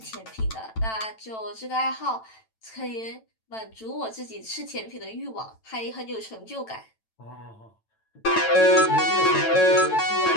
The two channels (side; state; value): right; late; 9.0 ms